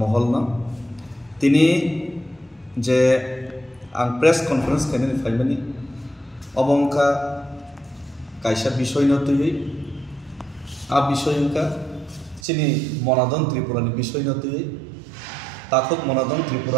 तिनी जे आं press conference खायनानै फायमानि अबंका कायसा विषय नतुयै आ विषय उनका चिनी मनादन त्रिपुरानि विषय नतुयै ताखुक मनादन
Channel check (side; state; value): left; drops out; at 12.4 s